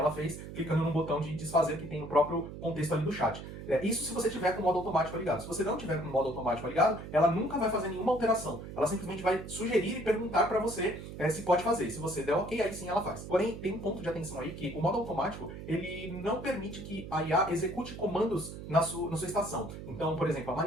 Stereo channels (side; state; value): right; noise; hum, 11 dB below the sound